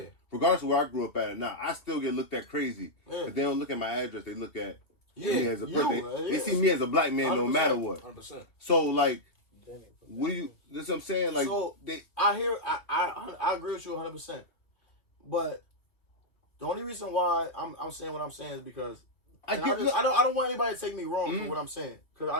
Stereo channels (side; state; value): right; late; 2.6 ms